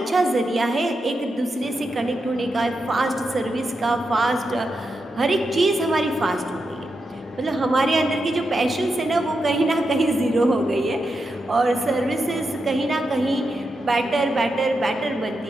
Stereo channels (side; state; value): both; normal; correlation 0.87